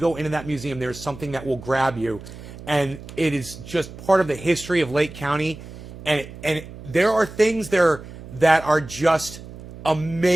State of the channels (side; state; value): right; noise; hum, 15 dB below the sound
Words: into that museum, there's something that will grab you, and it is just part of the history of Lake County, and there are things there that are just